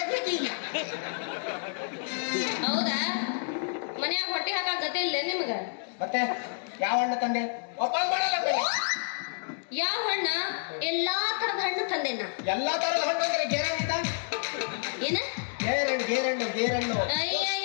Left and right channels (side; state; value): right; silent; digital silence